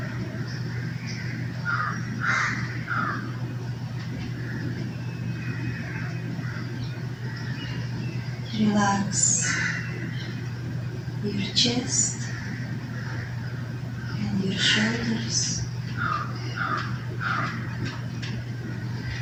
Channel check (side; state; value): both; identical; correlation 1.00